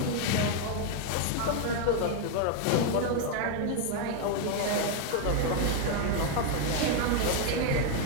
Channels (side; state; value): both; different; correlation 0.01